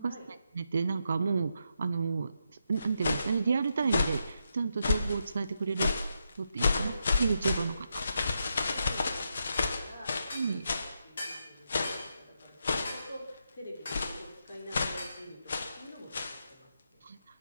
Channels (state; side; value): inverted; both; correlation -0.82